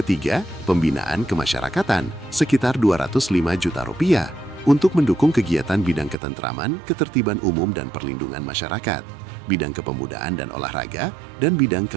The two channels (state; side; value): drops out; left; at 6.2 s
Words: pembinaan kemasyarakatan sekitar Rp205 juta untuk mendukung kegiatan bidang ketentraman, ketertiban umum dan perlindungan masyarakat, bidang kepemudaan dan olahraga, dan bidang